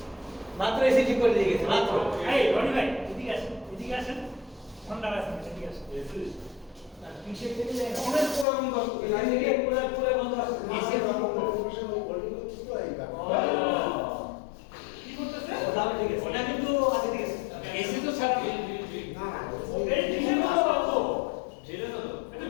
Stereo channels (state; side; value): drops out; right; at 8.5 s